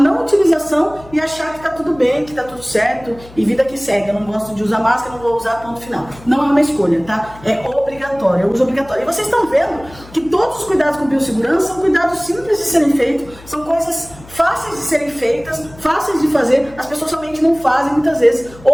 utilização e achar que tá tudo bem, que tá tudo certo e vida que segue. Eu não gosto de usar máscara, não vou usar, ponto final. Não é uma escolha, tá? É obrigatório, é uso obrigatório. E vocês estão vendo que todos os cuidados com biossegurança são cuidados simples de serem feitos, são coisas fáceis de serem feitas, fáceis de fazer. As pessoas somente não fazem muitas vezes,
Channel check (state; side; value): noise; left; hum, 21 dB below the sound